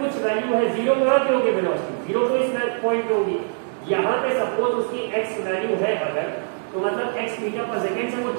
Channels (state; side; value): silent; left; digital silence